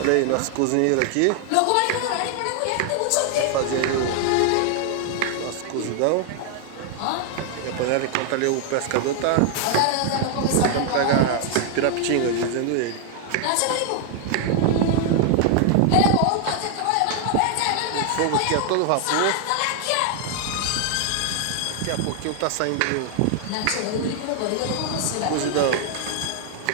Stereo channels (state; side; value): different; both; correlation 0.00